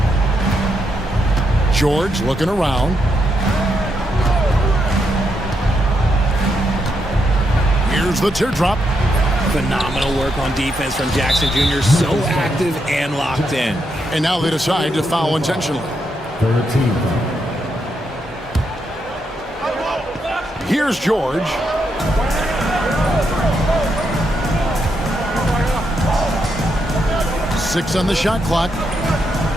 George looking around. Here's the teardrop. Phenomenal work on defense from Jackson Jr. So active and locked in. And now they decide to foul intentionally. Here's George. Six on the shot clock.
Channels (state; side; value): normal; both; correlation 0.80